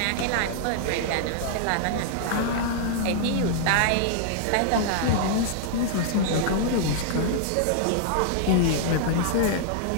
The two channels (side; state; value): both; different; correlation -0.01